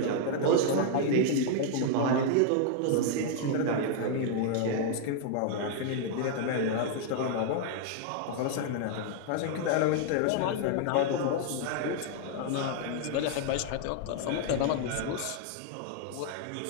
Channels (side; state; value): both; different; correlation -0.01